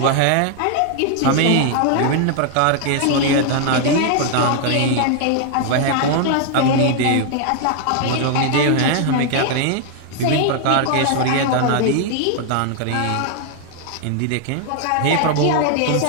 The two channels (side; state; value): both; different; correlation 0.00